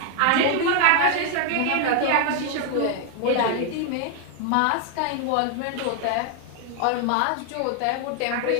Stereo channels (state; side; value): different; both; correlation 0.00